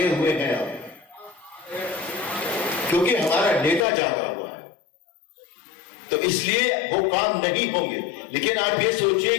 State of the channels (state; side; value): drops out; right; at 3.9 s